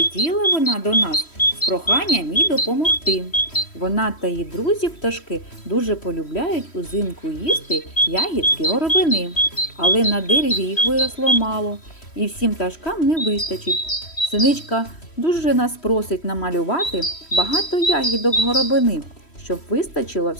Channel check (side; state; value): right; late; 3.1 ms